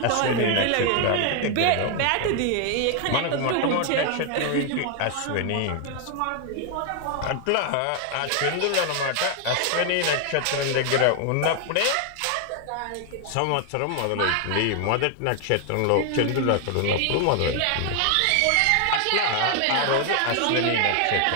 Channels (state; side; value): different; both; correlation 0.00